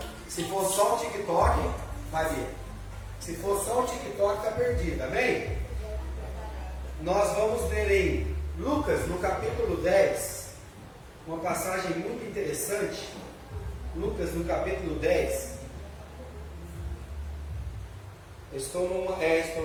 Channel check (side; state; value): both; identical; correlation 1.00